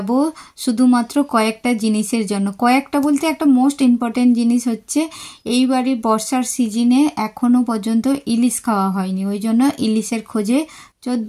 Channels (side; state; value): both; identical; correlation 1.00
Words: শুধুমাত্র কয়েকটা জিনিসের জন্য। কয়েকটা বলতে একটা মোস্ট ইম্পর্টেন্ট জিনিস হচ্ছে এইবারই বর্ষার সিজনে এখনও পর্যন্ত ইলিশ খাওয়া হয়নি, ওই জন্য ইলিশের খোঁজে